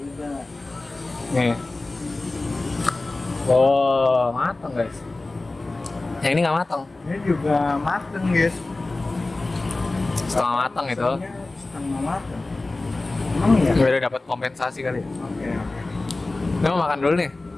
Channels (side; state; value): right; quieter; 3.1 dB